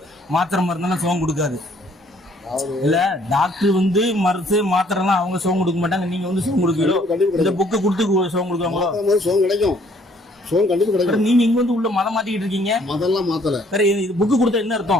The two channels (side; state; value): both; normal; correlation 0.62